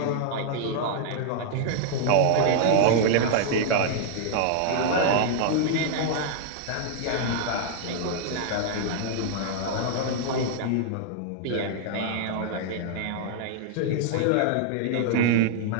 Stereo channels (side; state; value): both; different; correlation -0.01